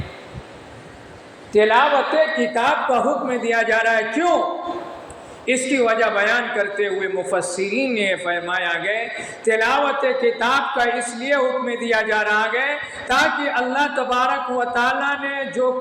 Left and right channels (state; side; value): identical; both; correlation 1.00